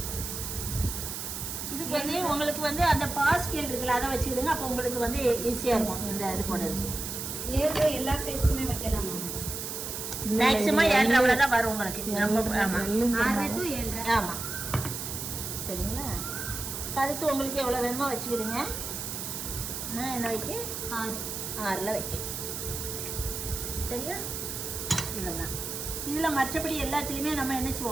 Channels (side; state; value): right; noise; hiss, 5 dB below the sound